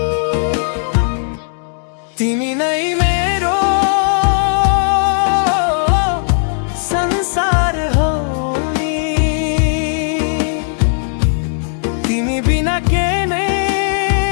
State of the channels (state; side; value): silent; right; 67 dB below the other